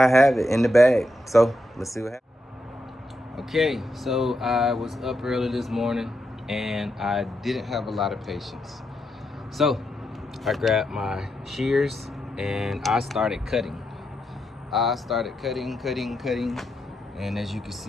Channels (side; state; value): both; normal; correlation 0.83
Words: have it in the bag. So let's see what happens. Okay, so I was up early this morning and I didn't have a lot of patience. So I grabbed my shears and I started cutting. Cutting. And as you can